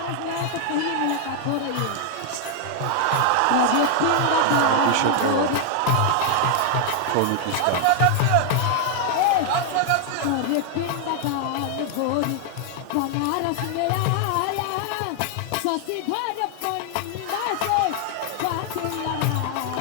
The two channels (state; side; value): different; both; correlation 0.00